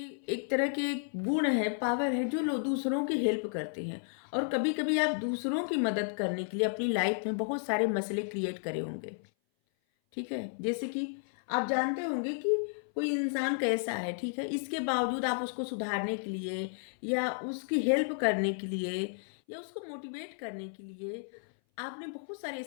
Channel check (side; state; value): right; silent; 56 dB below the other